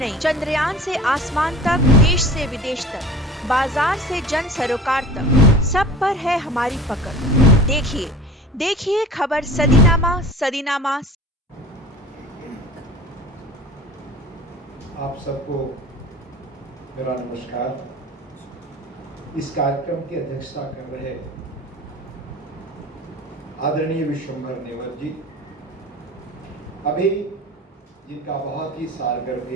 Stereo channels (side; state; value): both; normal; correlation 0.40